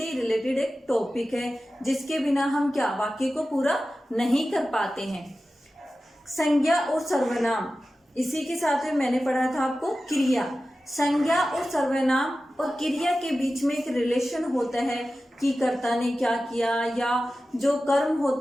ही रिलेटेड एक टॉपिक है जिसके बिना हम क्या वाक्य को पूरा नहीं कर पाते हैं। संज्ञा और सर्वनाम, इसी के साथ में मैंने पढ़ा था आपको क्रिया। संज्ञा और सर्वनाम और क्रिया के बीच में एक रिलेशन होता है कि कर्ता ने क्या किया या जो कर्म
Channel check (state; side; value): normal; both; correlation 0.94